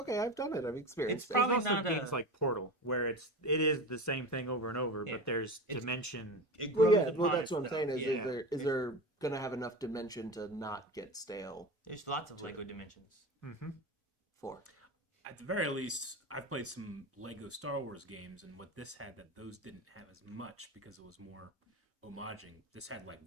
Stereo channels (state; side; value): normal; both; correlation 0.26